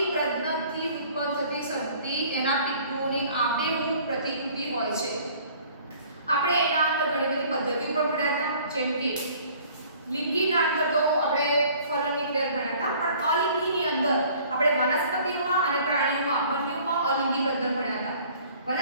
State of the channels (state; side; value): inverted; both; correlation -0.53